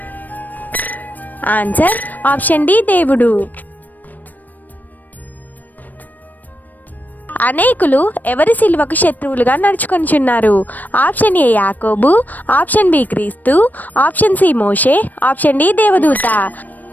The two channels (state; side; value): late; right; 0.085 ms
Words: ఆన్సర్ ఆప్షన్ డి దేవుడు. అనేకులు ఎవరి సిలువకు శత్రువులుగా నడుచుకొనిచున్నారు? ఆప్షన్ ఏ యాకోబు, ఆప్షన్ బి క్రీస్తు, ఆప్షన్ సి మోషే, ఆప్షన్ డి దేవదూత.